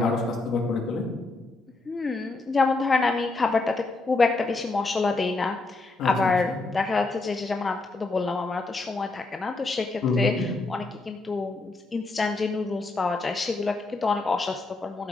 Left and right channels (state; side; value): quieter; right; 3.4 dB